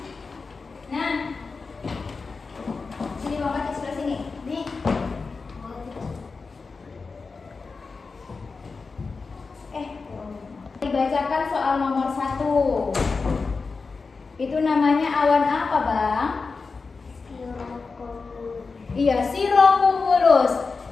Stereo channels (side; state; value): right; quieter; 4.4 dB